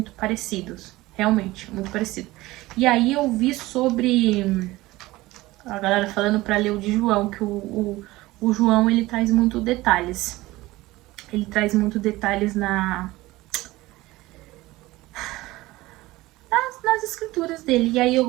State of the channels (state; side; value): quieter; left; 18.9 dB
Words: parecidos. Realmente, muito parecidos. E aí eu vi sobre a galera falando pra ler o de João, que o João, ele traz muito detalhes. Ele traz muito detalhes nas escrituras dele. E aí